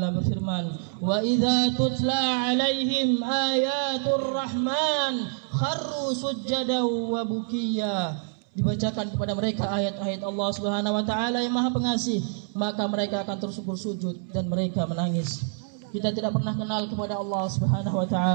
berfirman, "Wa idza tutla 'alaihim ayatur rahman kharru sujjadan wa bukiya." Dibacakan kepada mereka ayat-ayat Allah Subhanahu wa taala yang Maha Pengasih, maka mereka akan tersungkur sujud dan mereka menangis. Kita tidak pernah kenal kepada Allah Subhanahu wa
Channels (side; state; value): left; silent; 60 dB below the other